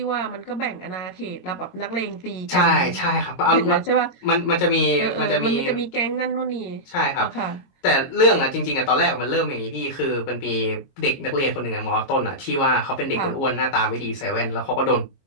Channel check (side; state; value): right; late; 22 ms